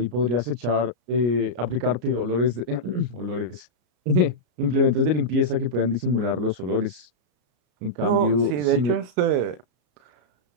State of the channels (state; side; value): late; left; 33 ms